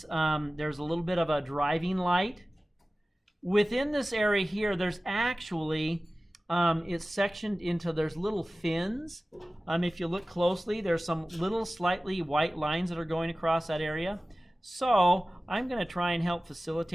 there's a little bit of a driving light. Within this area here, there's actually, it's sectioned into, there's little fins. If you look closely, there's some little slightly white lines that are going across that area. So, I'm going to try and help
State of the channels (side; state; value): both; normal; correlation 0.97